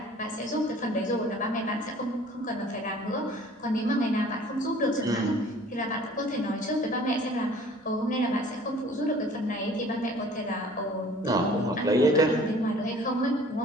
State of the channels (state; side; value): normal; both; correlation 0.50